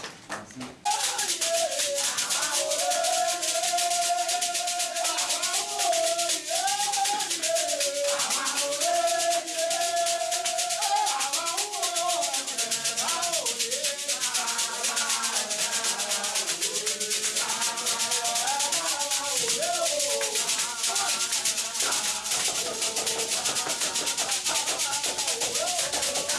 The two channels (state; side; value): identical; both; correlation 1.00